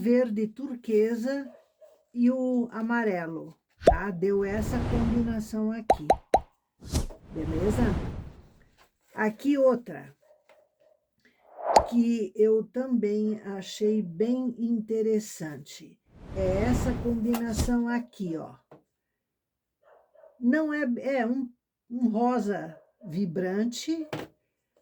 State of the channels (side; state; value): both; identical; correlation 1.00